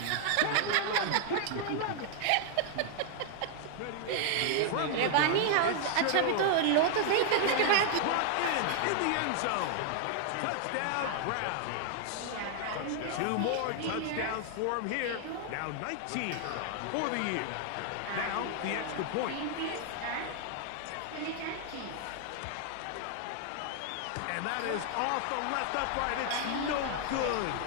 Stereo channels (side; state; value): both; different; correlation 0.00